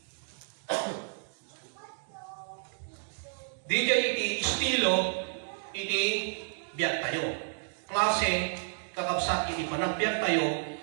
di jay iti estilo iti biyak tayo. Klase kakabsat iti panagbiyak tayo,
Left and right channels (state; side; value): silent; left; digital silence